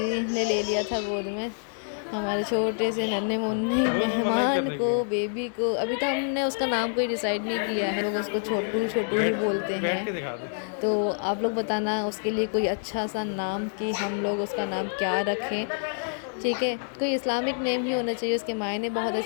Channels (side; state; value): right; silent; digital silence